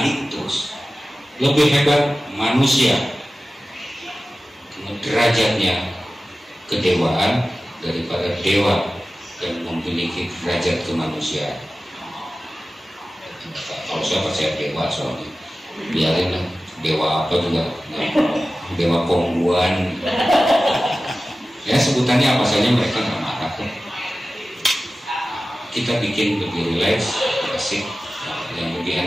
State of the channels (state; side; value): normal; both; correlation 0.95